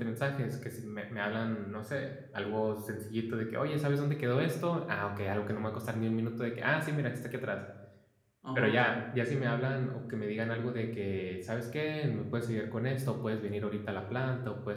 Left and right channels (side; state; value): both; identical; correlation 1.00